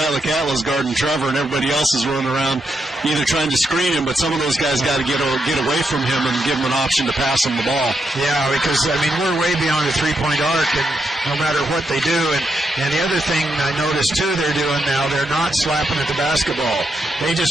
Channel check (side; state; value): both; normal; correlation 0.82